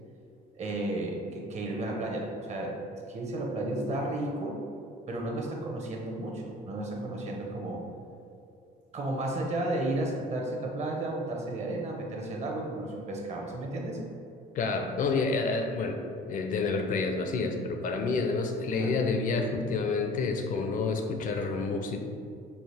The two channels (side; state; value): both; normal; correlation 0.47